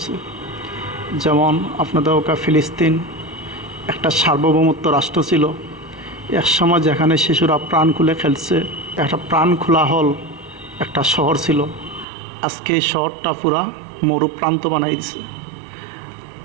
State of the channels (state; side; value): drops out; left; at 12.1 s